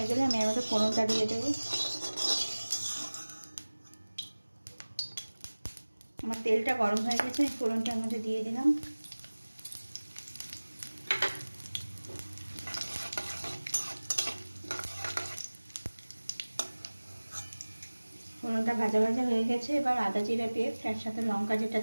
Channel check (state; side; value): inverted; both; correlation -1.00